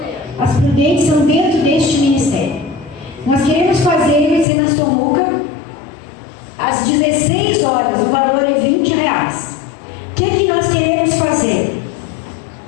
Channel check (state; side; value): drops out; right; at 4.5 s